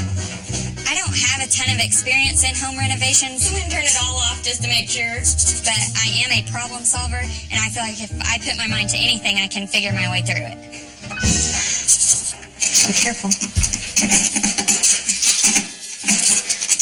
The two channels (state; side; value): identical; both; correlation 1.00